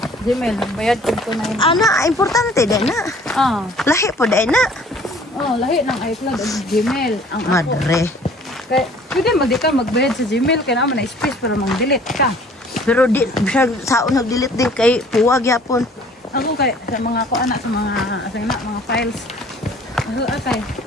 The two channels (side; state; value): both; normal; correlation 0.53